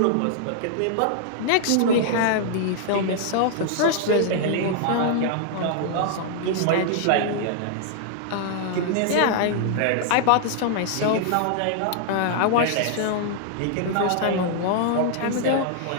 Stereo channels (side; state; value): both; different; correlation -0.01